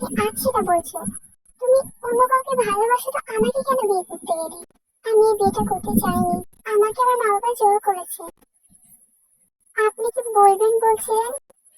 আজ সেটা বলছো। তুমি অন্য কাউকে ভালোবাসো তো আমাকে কেন বিয়ে করতে গেলে? আমি এই বিয়েটা করতে চাইনি, আমাকে আমার মা বাবা জোর করেছে। আপনি কি বলবেন বলছিলেন?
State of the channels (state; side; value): identical; both; correlation 1.00